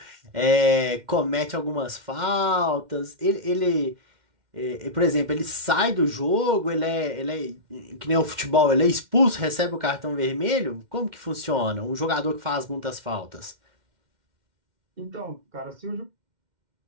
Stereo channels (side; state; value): left; late; 2.1 ms